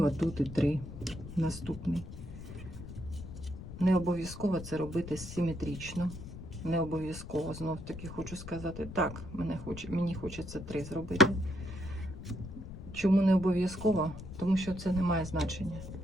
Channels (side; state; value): left; noise; rumble, 11 dB below the sound